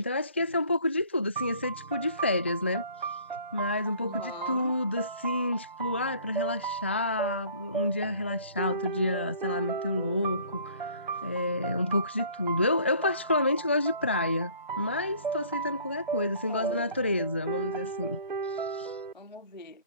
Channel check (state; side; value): inverted; both; correlation -0.54